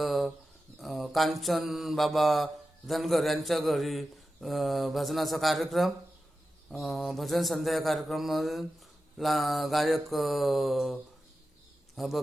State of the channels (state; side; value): normal; both; correlation 0.92